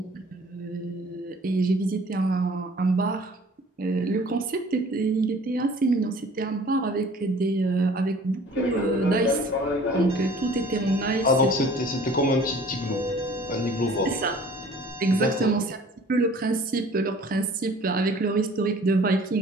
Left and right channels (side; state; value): both; normal; correlation 0.50